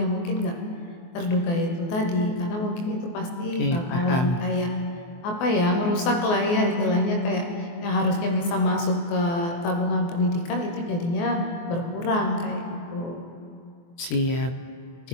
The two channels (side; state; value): right; late; 24 ms